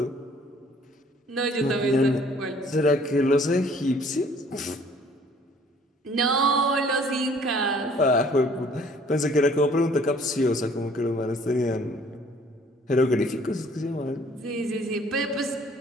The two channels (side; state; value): both; normal; correlation 0.57